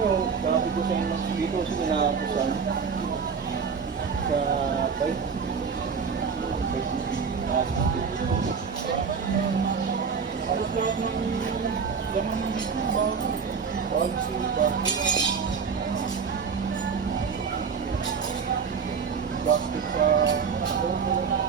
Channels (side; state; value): left; quieter; 5.9 dB